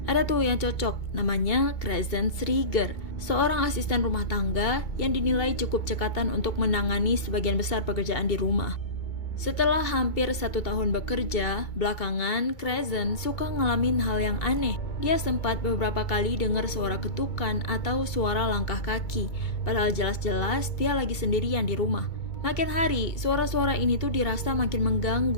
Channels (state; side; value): late; right; 2.2 ms